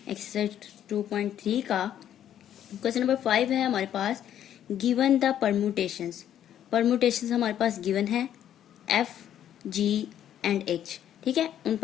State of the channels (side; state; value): right; quieter; 10.6 dB